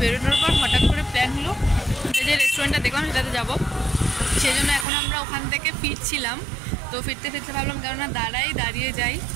বেরোনোর পর হঠাৎ করে প্ল্যান হলো যে রেস্টুরেন্টটা দেখলাম সেটাতে যাবো। সেই জন্য এখন আমরা ওখান থেকে ফিরছিলাম। তো ফিরতে ফিরতে ভাবলাম কেননা দাঁড়িয়ে যাই,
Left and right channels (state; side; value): drops out; left; at 4.9 s